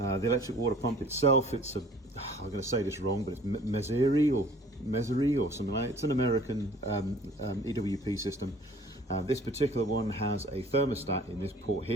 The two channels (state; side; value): normal; both; correlation 0.51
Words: electric water pump itself, it's I'm going to say this wrong, but it's Meseri or something like that. It's an American EWP system. This particular one has a thermostat in this port